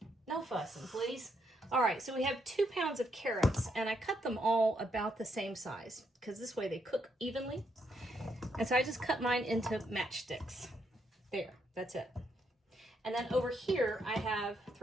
no fussing, please. All right, so we have 2 pounds of carrots, and I cut them all about the same size because this way they cook evenly. And so I just cut mine into matchsticks. There, that's it. And then over here, I have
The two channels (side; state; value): both; normal; correlation 0.76